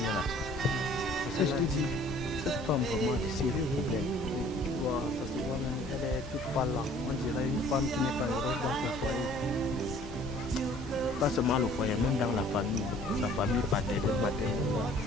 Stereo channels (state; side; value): normal; both; correlation 0.54